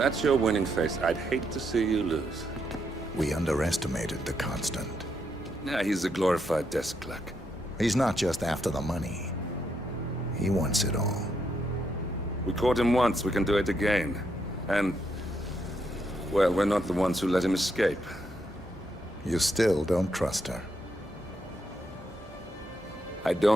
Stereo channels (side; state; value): both; normal; correlation 0.78